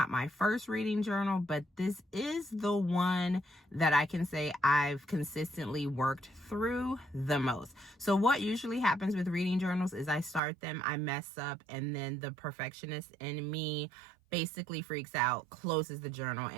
my first reading journal, but this is the one that I can say I've consistently worked through the most. So what usually happens with reading journals is I start them, I mess up, and then the perfectionist in me basically freaks out, closes the journal,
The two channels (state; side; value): drops out; left; at 10.4 s